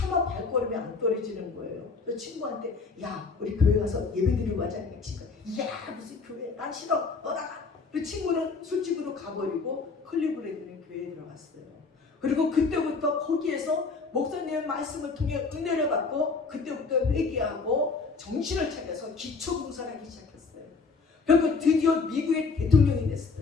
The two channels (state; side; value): quieter; right; 4.5 dB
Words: 발걸음이 안 떨어지는 거예요. 그래서 친구한테 야 우리 교회 가서 예배드리고 가자니까 친구가 야 무슨 교회 난 싫어 너 나가. 그 친구는 술집으로 가버리고 클리브랜드는 교회에 들어갔어요. 그리고 그때부터 거기에서 목사님의 말씀을 통해 은혜를 받고 그때부터 회개하고 정신을 차려서 기초봉사를 하기 시작했어요. 그리고 드디어 미국의 대통령이